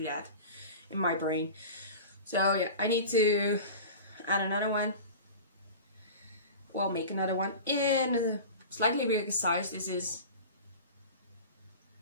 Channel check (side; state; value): both; inverted; correlation -0.34